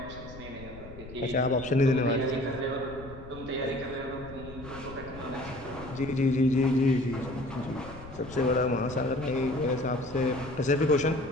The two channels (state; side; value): noise; left; rumble, 15 dB below the sound